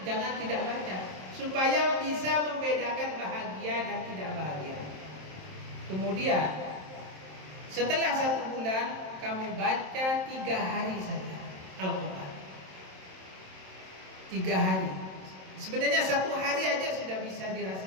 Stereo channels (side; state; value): left; late; 27 ms